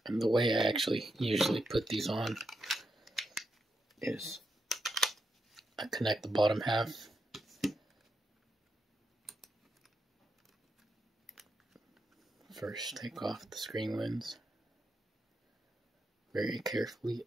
And the way I actually usually put these on is I connect the bottom half. First, take off the screen lens very carefully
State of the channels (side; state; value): both; normal; correlation 0.83